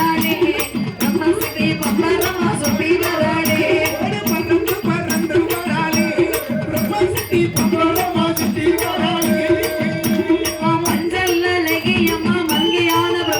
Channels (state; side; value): identical; both; correlation 1.00